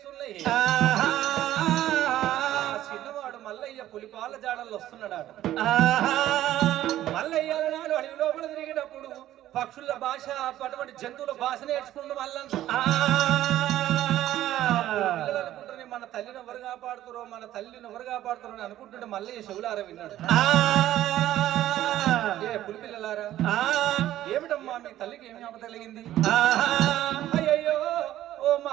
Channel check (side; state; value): left; quieter; 13.3 dB